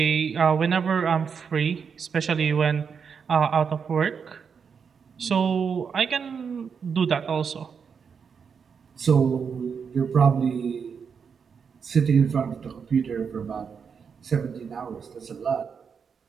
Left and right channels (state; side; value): quieter; left; 6.4 dB